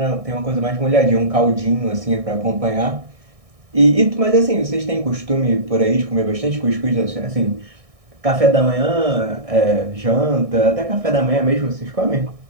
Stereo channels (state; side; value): late; left; 1.6 ms